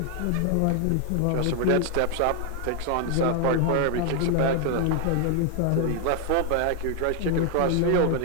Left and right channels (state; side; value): different; both; correlation 0.00